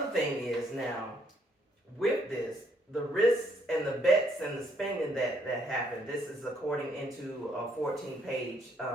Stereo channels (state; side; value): normal; both; correlation 0.69